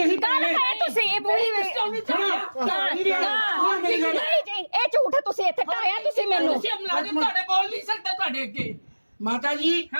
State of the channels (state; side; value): inverted; both; correlation -1.00